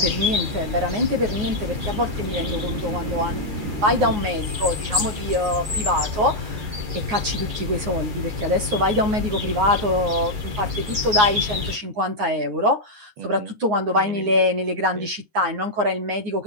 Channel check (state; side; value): late; left; 9.7 ms